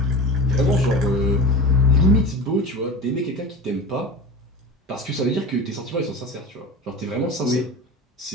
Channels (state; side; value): normal; both; correlation 0.32